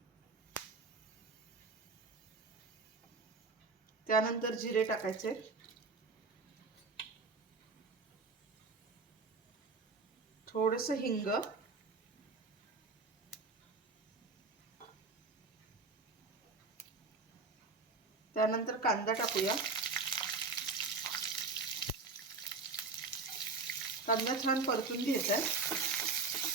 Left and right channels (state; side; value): quieter; left; 4.0 dB